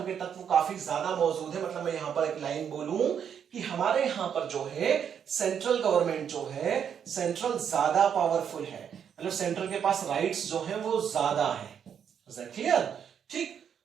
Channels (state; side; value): quieter; left; 8.1 dB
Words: के तत्व काफी ज्यादा मौजूद है। मतलब मैं यहां पर एक लाइन बोलूं कि हमारे यहां पर जो है सेंट्रल गवर्नमेंट जो है, सेंट्रल ज्यादा पावरफुल है, मतलब सेंट्रल के पास राइट्स जो है वो ज्यादा है। क्लियर? ठीक,